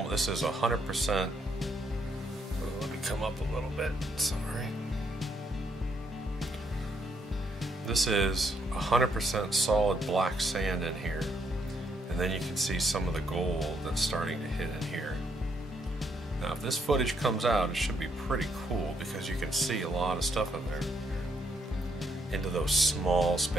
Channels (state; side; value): normal; both; correlation 0.73